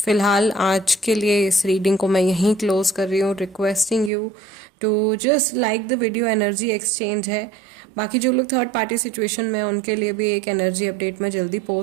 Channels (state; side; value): drops out; left; at 4.1 s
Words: आज के लिए इस रीडिंग को मैं यहीं क्लोज कर रही हूँ, requesting you to just like the video. Energy exchange है। बाकी जो लोग थर्ड पार्टी सिचुएशन में हैं उनके लिए भी एक एनर्जी अपडेट मैं जल्दी